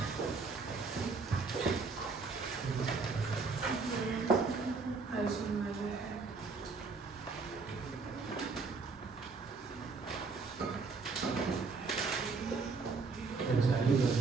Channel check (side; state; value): left; quieter; 4.4 dB